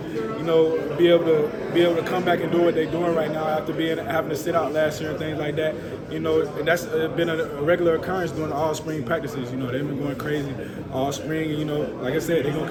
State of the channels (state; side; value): identical; both; correlation 1.00